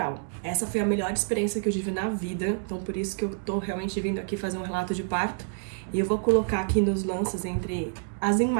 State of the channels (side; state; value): left; silent; digital silence